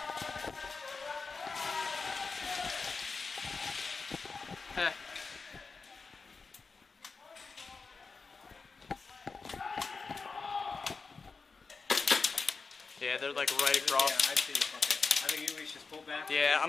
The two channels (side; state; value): right; quieter; 4.5 dB